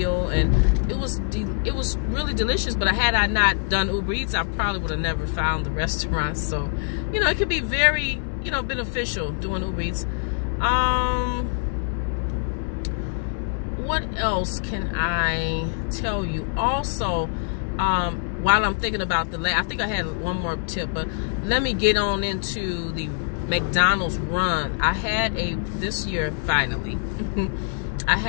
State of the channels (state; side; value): silent; right; digital silence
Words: and it was really delicious. But had I not done Uber Eats, I probably would have never found the restaurant. So, it can be very you know, beneficial doing Uber Eats. What else can I tell you? Also, while I'm thinking about I think I had one more tip, but let me get on into the McDonald's run. I had this year, finally, I